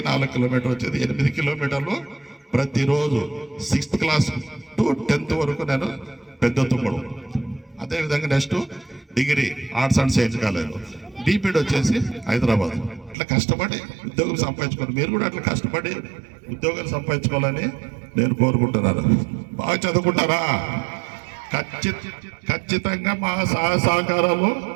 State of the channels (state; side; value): drops out; left; at 13.2 s